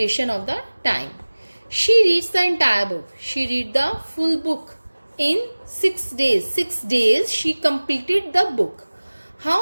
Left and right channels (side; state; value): both; inverted; correlation -1.00